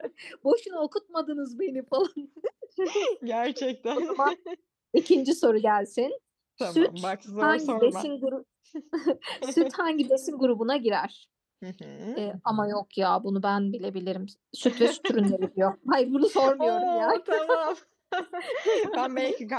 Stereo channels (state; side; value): identical; both; correlation 1.00